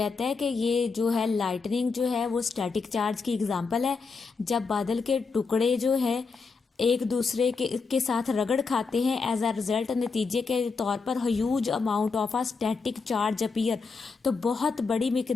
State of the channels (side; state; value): right; quieter; 4.7 dB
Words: है कि ये जो है लाइटनिंग जो है वो स्टैटिक चार्ज की एग्जाम्पल है, जब बादल के टुकड़े जो है एक दूसरे के साथ रगड़ खाते हैं, एज अ रिजल्ट, नतीजे के तौर पर, huge amount of a static charge appear, तो बहुत बड़ी